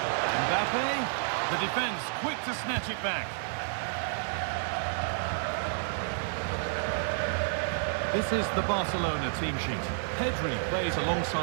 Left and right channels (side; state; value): left; silent; 58 dB below the other